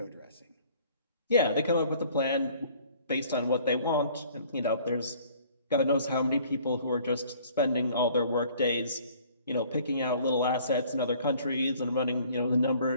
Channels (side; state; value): both; inverted; correlation -0.55